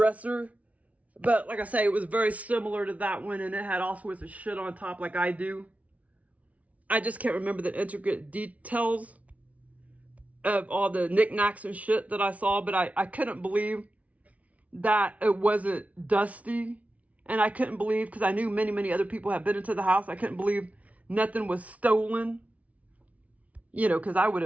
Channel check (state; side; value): late; left; 0.068 ms